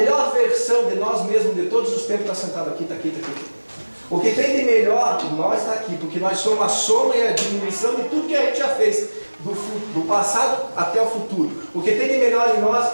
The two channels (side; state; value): both; inverted; correlation -1.00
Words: versão de nós mesmos de todos os tempos está sentado aqui, está aqui, está aqui. O que tem de melhor em nós está aqui, porque nós somos a soma e a diminuição de tudo que a gente já fez, do passado até o futuro. O que tem de melhor em